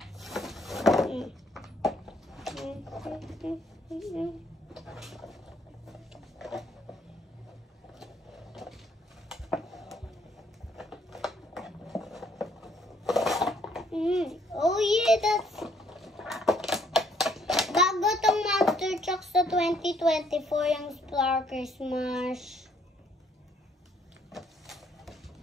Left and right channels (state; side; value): normal; both; correlation 0.66